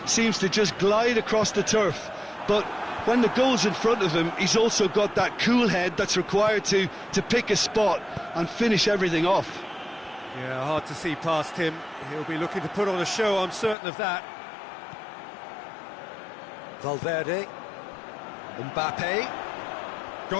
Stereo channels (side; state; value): right; drops out; at 13.8 s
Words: seems to just glide across the turf. But when the goal's in front of him, he's also got that cool head that's required to pick a spot and finish everything off. Yeah, hard to see past him. He'll be looking to put on a show, I'm certain of that. Valverde. Mbappe.